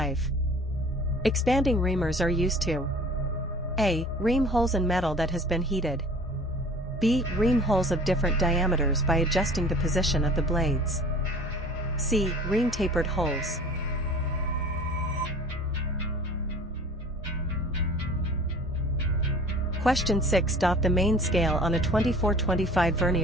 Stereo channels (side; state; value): both; normal; correlation 0.46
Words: Expanding reamers are used to A. Ream holes in metal that has been heated. B. Ream holes of different diameters by adjusting the position of the blades. C. Ream tapered holes. Question 6. The main scale on a 24-25